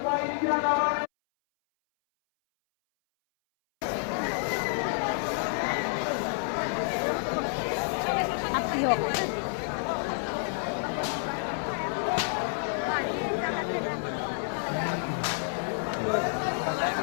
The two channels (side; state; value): right; silent; 58 dB below the other